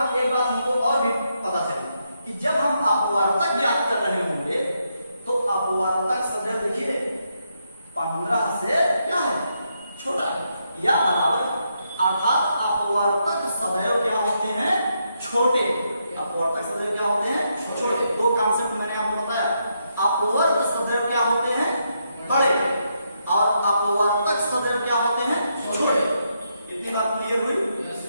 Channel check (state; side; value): inverted; both; correlation -0.80